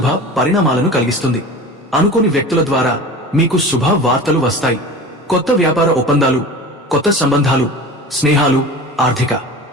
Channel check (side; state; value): both; normal; correlation 0.35